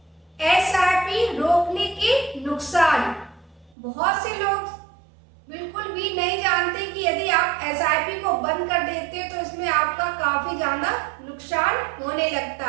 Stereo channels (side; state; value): left; drops out; at 3.8 s